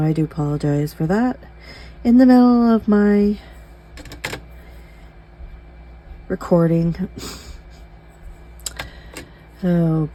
I do apologize for that. In the middle of my recording. Oh,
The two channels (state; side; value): identical; both; correlation 1.00